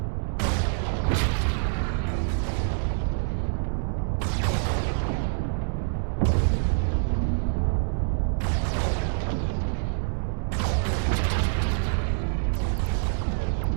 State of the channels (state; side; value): silent; left; digital silence